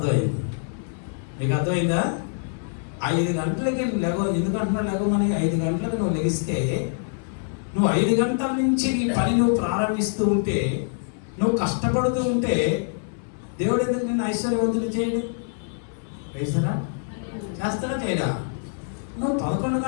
మీకు అర్థమైందా? 5 గంటలకి ఎందుకంటున్నావు లెగమని? 5 గంటలకు నువ్వు లెగిస్తే నువ్వు 5 గంటల నుంచి నీ పని నువ్వు ప్రారంభిస్తూ ఉంటే, నువ్వు కష్టపడుతూ ఉంటే దేవుడు ఎందుకు నిన్ను ఐశ్వర్యవంతులు చేయడు? వేస్తారా? చేస్తారా చేయడా? నువ్వు 11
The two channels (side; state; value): right; silent; 62 dB below the other